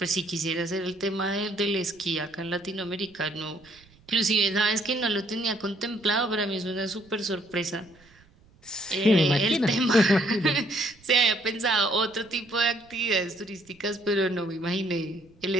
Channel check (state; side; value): noise; right; rumble, 29 dB below the sound